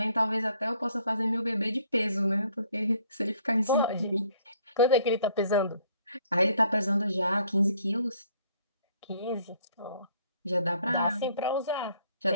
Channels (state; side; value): inverted; both; correlation -0.63